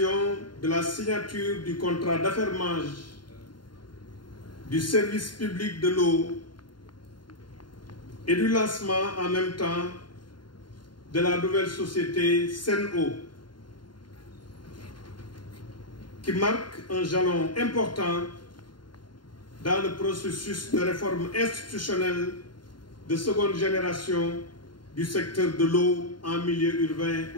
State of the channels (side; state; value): right; late; 0.71 ms